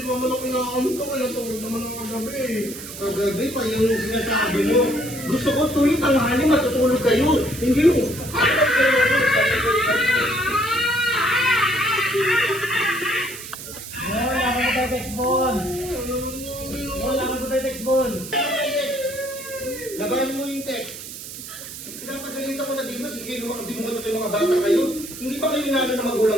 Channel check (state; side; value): noise; right; hiss, 11 dB below the sound